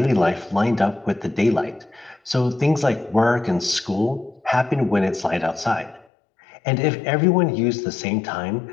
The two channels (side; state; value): right; drops out; at 6.1 s